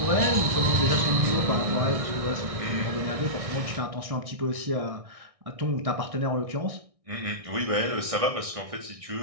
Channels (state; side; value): late; left; 1.6 ms